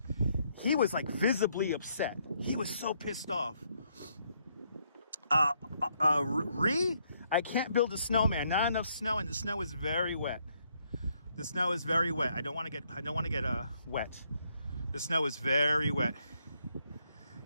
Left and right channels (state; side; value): inverted; both; correlation -0.73